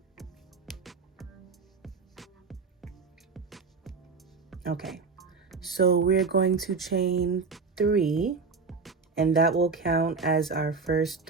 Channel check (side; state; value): left; quieter; 4.7 dB